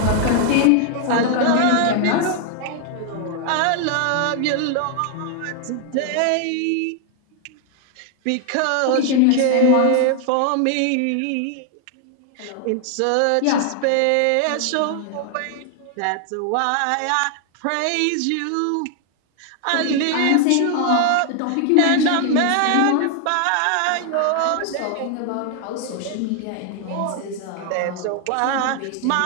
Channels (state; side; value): different; both; correlation 0.00